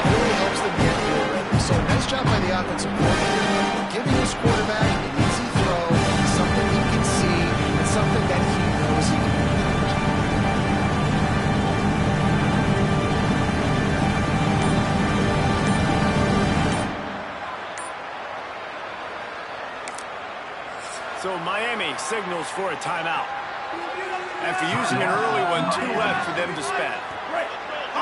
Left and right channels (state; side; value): identical; both; correlation 1.00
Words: really helps them get field ready. So nice job by the offensive coordinator, giving his quarterback an easy throw, something he can see, and something that he knows he can do. So Miami signals for a timeout. After using an early one, 2 left for them to spend.